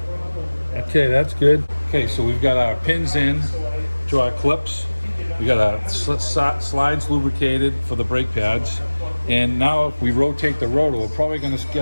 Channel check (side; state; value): both; inverted; correlation -1.00